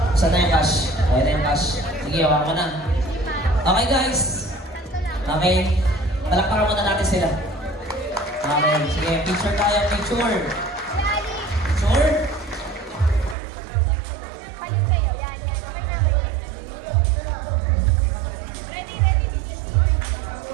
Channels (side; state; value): left; drops out; at 13.4 s